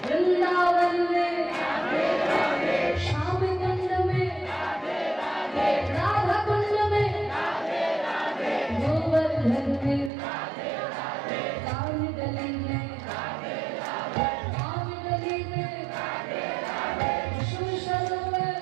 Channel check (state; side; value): drops out; left; at 10.1 s